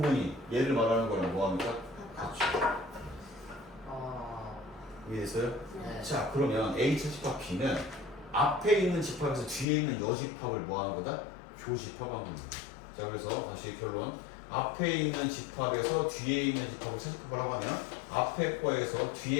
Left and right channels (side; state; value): right; drops out; at 9.7 s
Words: 얘를 말하는 거랑 뭐 합니까? 같죠. 이해됐어요? 네. 자, 그러면 A 차집합 B는 앞에 있는 집합에서 뒤에 있는 여집합을 뭐 하는 거다? 교집합한 겁니다. 자, 그래서 다시 결론. 앞에 있는 집합에서 뒤에 있는 집합을 차집합을 하고 하면 앞에 거에서